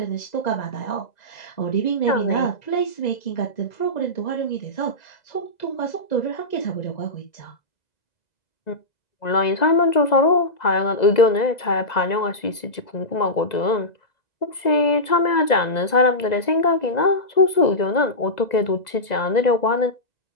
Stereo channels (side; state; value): right; late; 2.0 ms